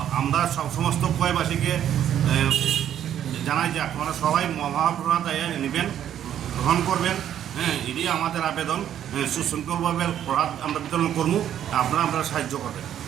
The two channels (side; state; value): left; quieter; 10.4 dB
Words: আমরা সমস্ত খোয়াইবাসীকে জানাই যে আপনারা সবাই মহাপ্রসাদ নেবেন, গ্রহণ করবেন। হ্যাঁ, এটি আমাদের আবেদন। সুশৃঙ্খলভাবে প্রসাদ আমরা বিতরণ করবো, আপনারা সাহায্য করবেন।